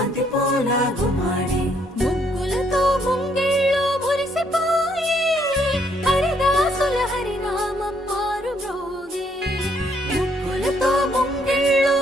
పూల గుమ్మాడి ముగ్గులతో ముంగిళ్ళు మురిసిపోయి హరిదాసుల హరినామం మారు మ్రోగే ముగ్గులతో ముంగిళ్ళు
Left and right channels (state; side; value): normal; both; correlation 0.70